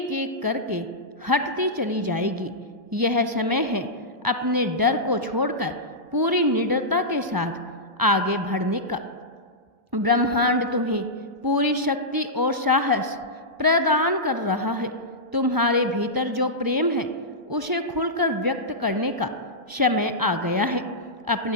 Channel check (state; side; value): late; left; 1.1 ms